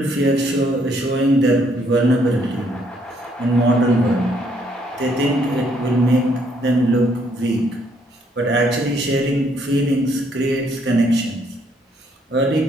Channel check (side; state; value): both; normal; correlation 0.69